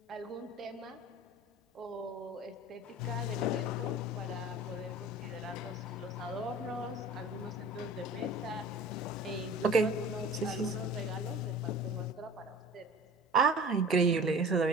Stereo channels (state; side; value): normal; both; correlation 0.41